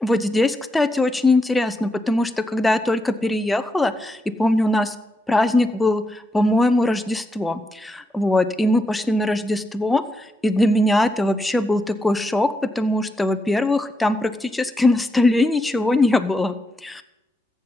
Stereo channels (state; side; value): normal; both; correlation 0.84